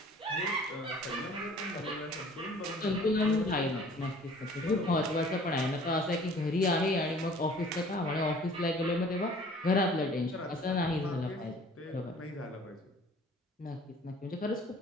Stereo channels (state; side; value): normal; both; correlation 0.51